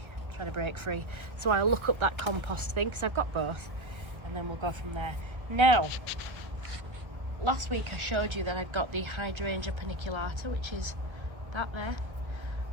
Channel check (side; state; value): left; late; 1.3 ms